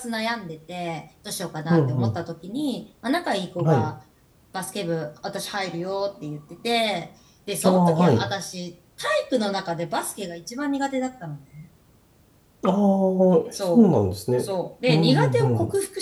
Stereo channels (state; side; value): identical; both; correlation 1.00